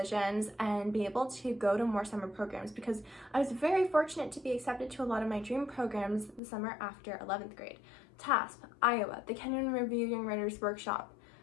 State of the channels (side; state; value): right; drops out; at 6.4 s